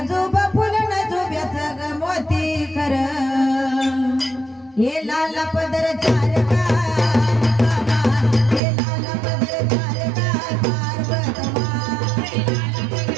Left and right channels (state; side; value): drops out; left; at 8.6 s